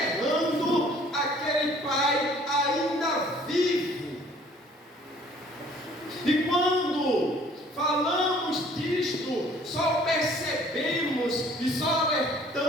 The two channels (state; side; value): normal; both; correlation 0.56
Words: aquele pai ainda vivo. E quando falamos disto, só percebemos e só